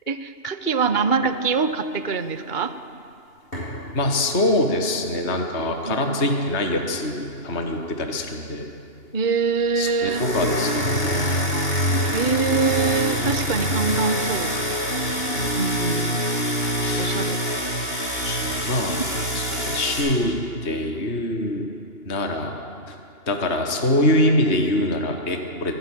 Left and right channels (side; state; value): right; late; 2.8 ms